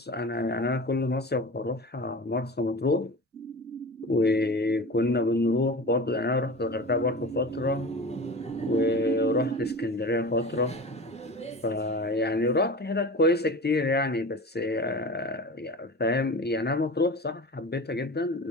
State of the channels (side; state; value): both; normal; correlation 0.34